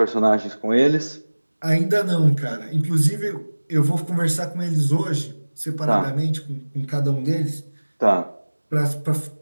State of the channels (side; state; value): both; inverted; correlation -1.00